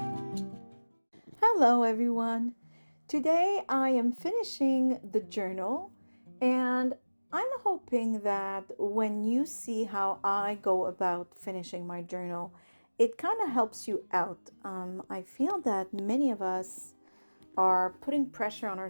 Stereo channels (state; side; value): inverted; both; correlation -1.00